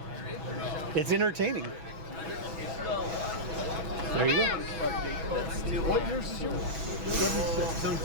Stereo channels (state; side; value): late; left; 6.2 ms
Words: it's entertaining. There you go. What years is yours? 76.